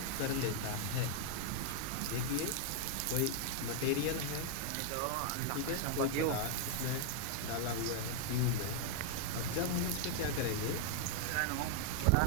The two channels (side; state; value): both; different; correlation -0.01